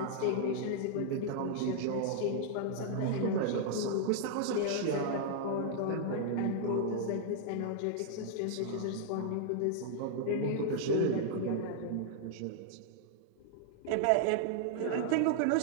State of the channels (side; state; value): both; different; correlation -0.01